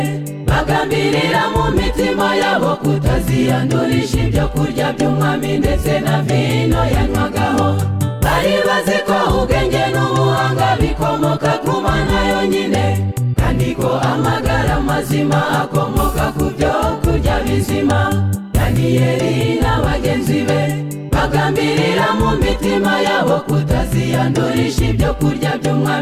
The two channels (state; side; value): identical; both; correlation 1.00